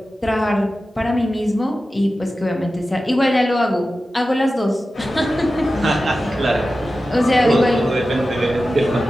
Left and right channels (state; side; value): normal; both; correlation 0.94